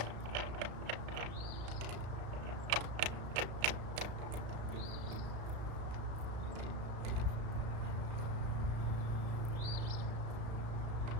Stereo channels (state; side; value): late; left; 34 ms